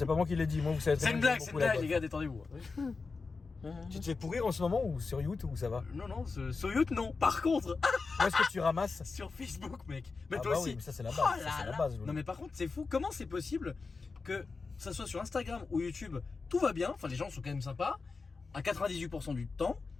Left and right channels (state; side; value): quieter; right; 4.3 dB